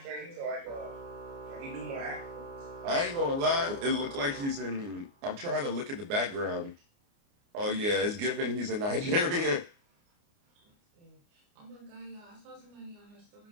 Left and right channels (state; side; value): late; left; 29 ms